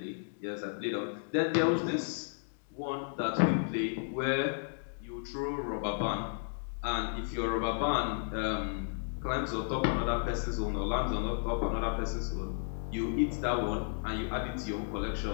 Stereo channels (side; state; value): right; silent; digital silence